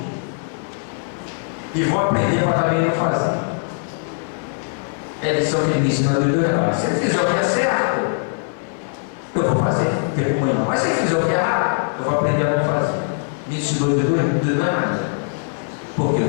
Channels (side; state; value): right; silent; 65 dB below the other